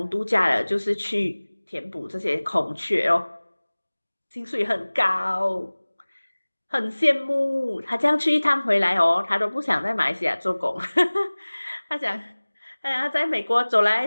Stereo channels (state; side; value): inverted; both; correlation -1.00